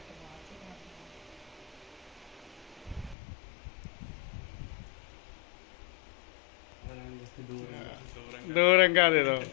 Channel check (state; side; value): drops out; right; at 3.2 s